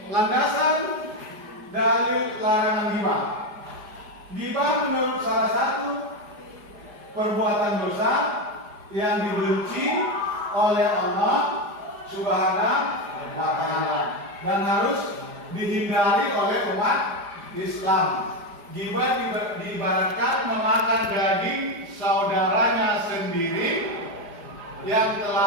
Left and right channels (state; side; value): late; left; 4.9 ms